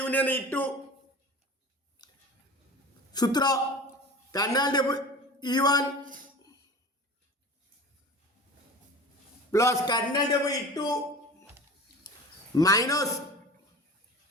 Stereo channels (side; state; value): both; normal; correlation 0.36